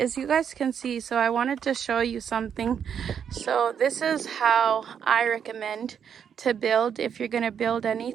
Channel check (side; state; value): left; quieter; 7.9 dB